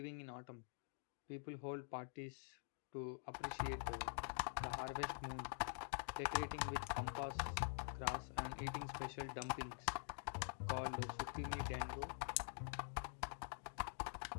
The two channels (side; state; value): right; silent; digital silence